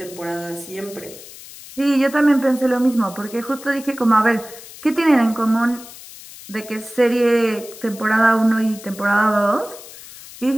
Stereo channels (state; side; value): noise; left; hiss, 17 dB below the sound